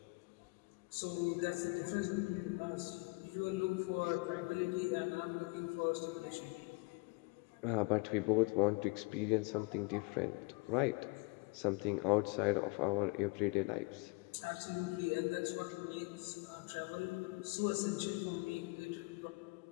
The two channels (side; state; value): right; quieter; 28.7 dB